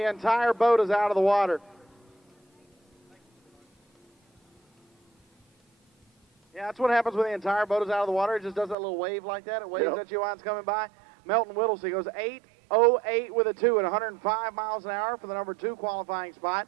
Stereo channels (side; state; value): left; drops out; at 8.8 s